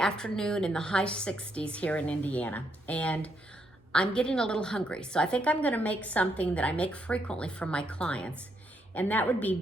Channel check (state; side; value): normal; both; correlation 0.76